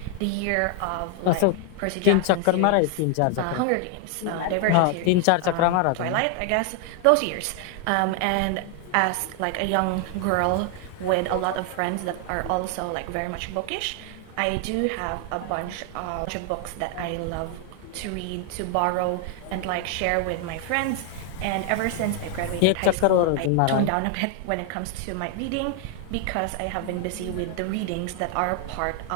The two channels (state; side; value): different; both; correlation 0.00